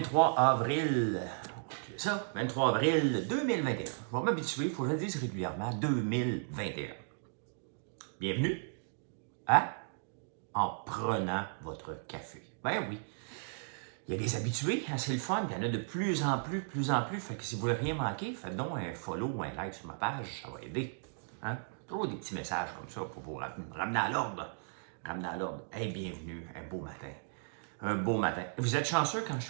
avril, c'est ça, 23 avril 2021. Je vais m'habituer, il faut que je le dise régulièrement, 2021. Bienvenue à En prenant votre café. Ben oui, il y a des habitués, hein, c'est le fun, il y en a de plus en plus, fait que si vous voulez rien manquer, faites donc un follow ou un like sur ma page, ça va aider. Hein? Toujours des petits messages comme ça pour vous ramener à l'ordre. Ramener à l'ordre. Hey, bienvenue, un beau matin. Un beau matin. Vous êtes chanceux quand je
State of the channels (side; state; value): left; silent; digital silence